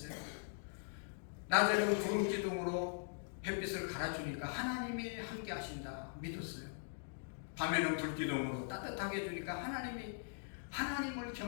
낮에는 구름 기둥으로 햇빛을 갈아주니까 하나님이 함께 하신다. 믿었어요. 밤에는 불기둥으로 따뜻하게 해주니까 하나님을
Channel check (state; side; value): silent; right; digital silence